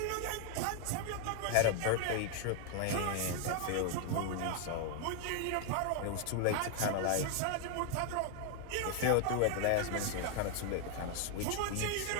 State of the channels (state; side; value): different; both; correlation 0.00